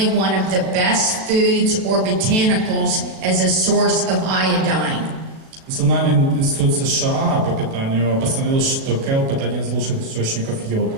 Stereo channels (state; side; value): late; left; 37 ms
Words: one of the best foods or botanicals as a source of iodine. Национальный институт США по питанию постановил, что келп – это один из лучших источников йода.